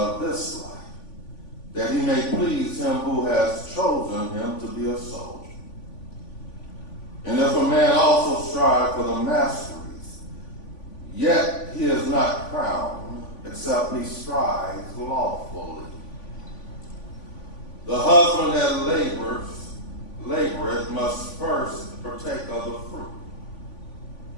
this life, that he may please him who has chosen him to be a soldier. And if a man also strive for the masteries, yet he is not crowned, except he strives lawfully. The husband that laboreth must first partake of the fruit.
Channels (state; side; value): late; right; 3.5 ms